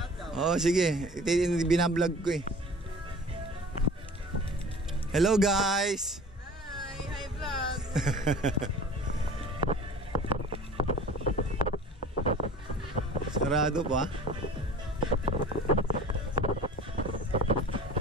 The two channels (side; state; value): both; normal; correlation 0.42